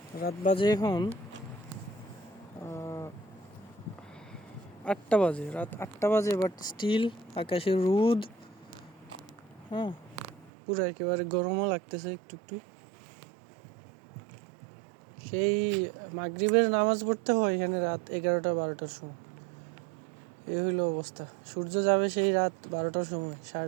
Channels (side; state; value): left; drops out; at 10.5 s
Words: রাত বাজে এখন 8টা বাজে, রাত 8টা বাজে, বাট স্টিল আকাশে রোদ। হ্যাঁ, পুরো একেবারে গরমও লাগতেছে একটু একটু। সেই মাগরিবের নামাজ পড়তে হয় এখানে রাত 11টা 12টার সময়। এই হইল অবস্থা। সূর্য যাবে সেই রাত 12টার সময়,